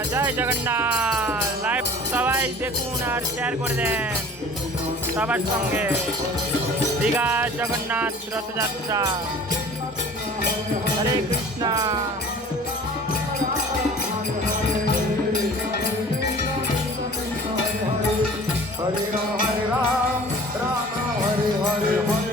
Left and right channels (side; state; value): both; normal; correlation 0.44